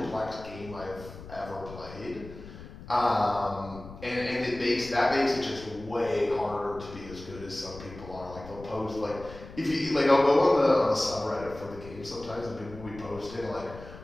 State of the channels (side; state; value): left; noise; rumble, 15 dB below the sound